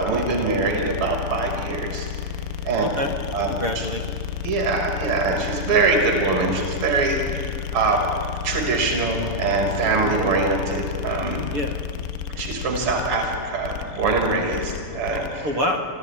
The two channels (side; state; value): left; late; 6.9 ms